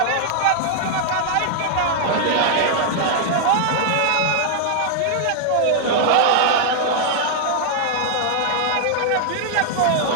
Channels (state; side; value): different; both; correlation -0.01